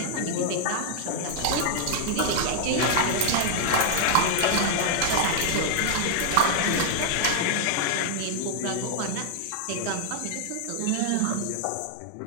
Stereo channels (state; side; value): different; both; correlation 0.00